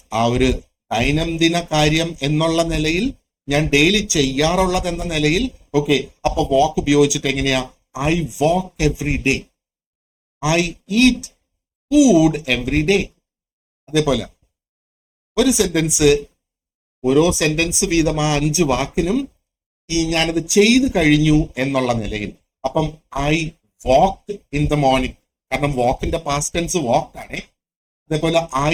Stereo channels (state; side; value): identical; both; correlation 1.00